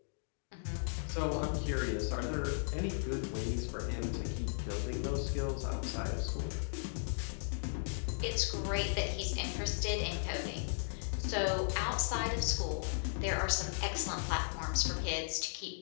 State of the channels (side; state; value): right; silent; digital silence